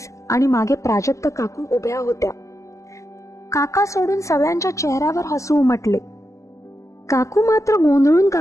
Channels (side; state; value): right; late; 0.15 ms